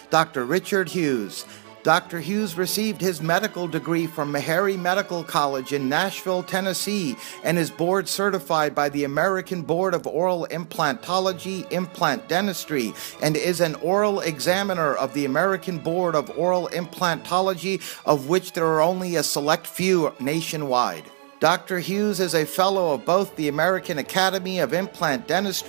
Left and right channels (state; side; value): silent; left; digital silence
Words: Dr. Richard Hughes. Dr. Hughes received his medical degree from Meharry Medical College in Nashville, Tennessee, and is board certified by the American Board of Oral Implantology, Implant Dentistry, and is an oral examiner of the American Board of Oral Implantology, of which there are only a select few nationwide. Dr. Hughes is a fellow of both the American Academy of Implant